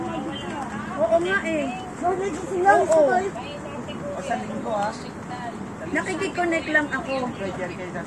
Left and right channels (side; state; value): both; identical; correlation 1.00